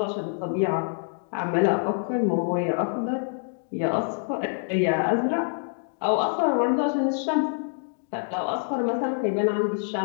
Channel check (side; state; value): right; silent; digital silence